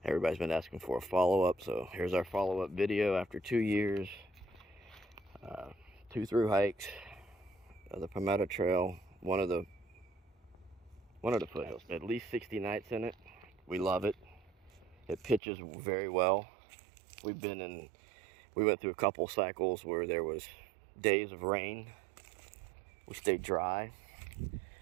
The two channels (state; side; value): drops out; left; at 15.4 s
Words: Everybody's been asking for a follow-up, so here's our follow-up video after 2 years. 2 through hikes, the Palmetto Trail, one of the foothills. At least 60 nights in it. We love it. It pitches very well. We went through a couple cycles where there was days of rain. We stayed dry.